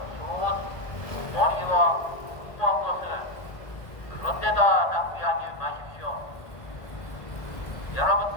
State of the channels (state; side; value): late; right; 1.5 ms